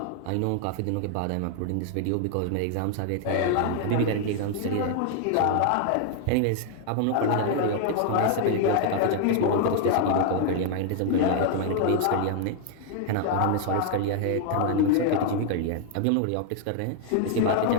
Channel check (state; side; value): different; both; correlation 0.00